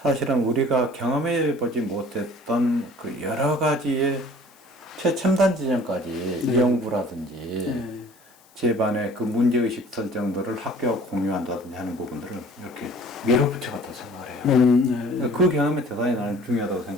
사실은 우리가 경험해 보지 못했던 그 여러 가지의 최첨단 지점까지 연구라든지 제반의 그 문제의식 설정들을 학교와 공유한다든지 하는 부분들을 이렇게 밀어붙여갔다고 생각을 해요. 그 경험이 대단히 나는 중요하다고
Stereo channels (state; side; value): noise; left; hiss, 29 dB below the sound